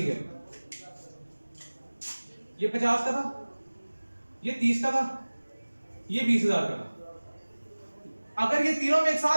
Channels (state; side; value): inverted; both; correlation -1.00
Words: है, ये 50 का था, ये 30 का था, ये 20,000 का था। अगर ये तीनों में एक